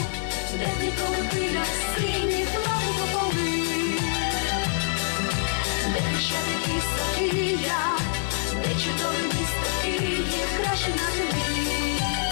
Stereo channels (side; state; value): right; silent; digital silence